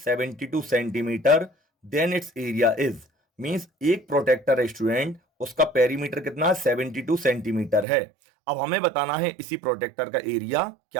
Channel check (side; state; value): left; drops out; at 7.9 s